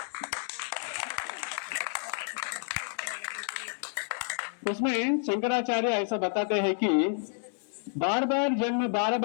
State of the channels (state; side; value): silent; right; digital silence